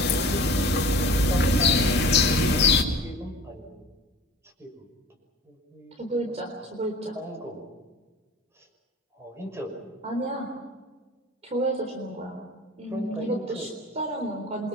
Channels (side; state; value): both; normal; correlation 0.42